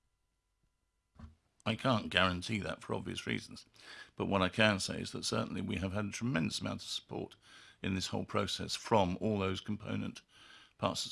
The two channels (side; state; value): both; identical; correlation 1.00